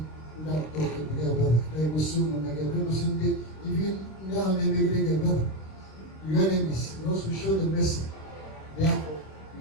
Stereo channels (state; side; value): late; right; 26 ms